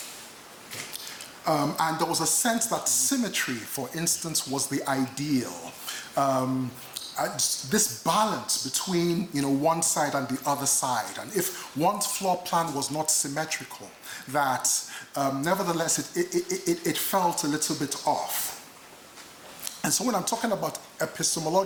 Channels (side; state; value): both; identical; correlation 1.00